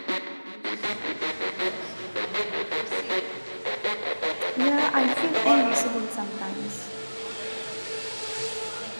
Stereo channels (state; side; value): inverted; both; correlation -1.00